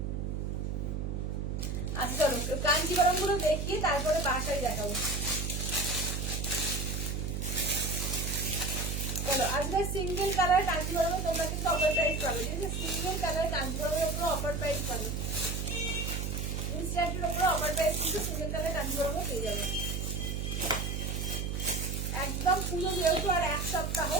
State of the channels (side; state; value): right; noise; hum, 2 dB below the sound